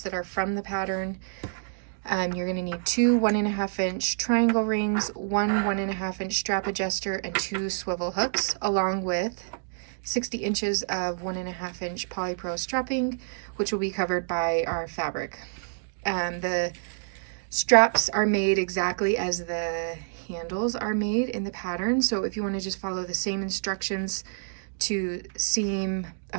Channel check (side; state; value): left; silent; digital silence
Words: that are from the pattern. You're going to need two 1.5 inch triangle rings, one 1.5 inch strap adjuster, and two swivel hooks, along with 60 inches of 1.5 inch polypro strapping, which will be covered by our fabric. The straps are made exactly as the handles are made in the pattern. So if you want to just follow the same instructions to seam